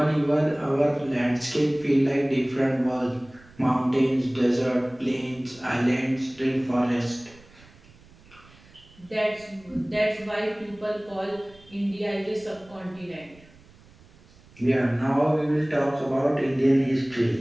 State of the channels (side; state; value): right; noise; rumble, 26 dB below the sound